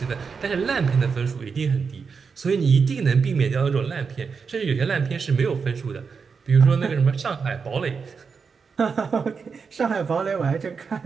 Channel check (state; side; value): quieter; left; 5.5 dB